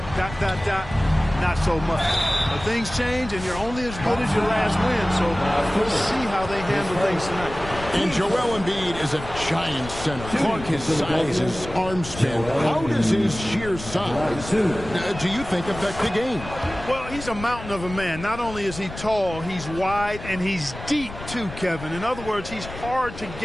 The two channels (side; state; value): left; noise; rumble, 12 dB below the sound